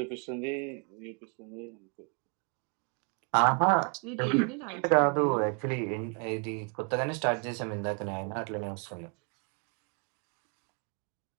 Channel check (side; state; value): left; quieter; 38.6 dB